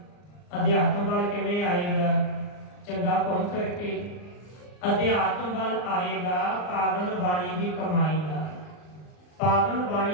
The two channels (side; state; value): right; late; 39 ms